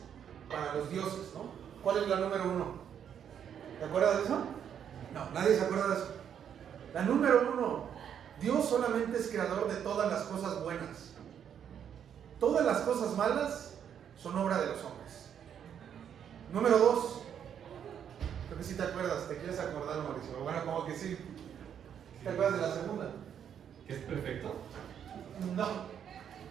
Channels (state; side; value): quieter; left; 8.7 dB